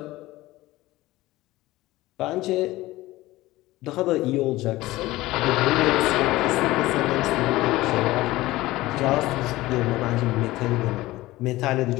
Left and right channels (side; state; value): right; quieter; 18.1 dB